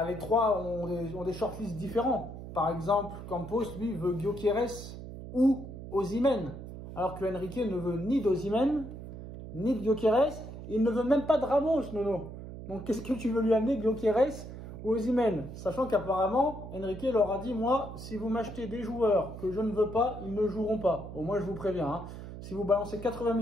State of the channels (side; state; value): right; noise; hum, 11 dB below the sound